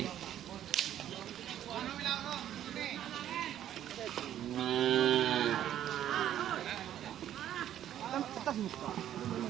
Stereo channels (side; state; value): left; quieter; 11.3 dB